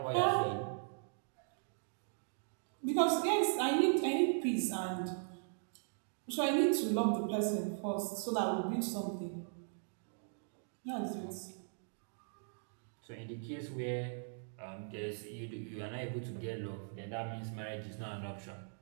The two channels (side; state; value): left; silent; digital silence